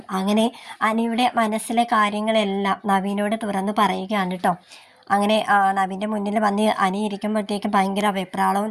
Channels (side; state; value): both; identical; correlation 1.00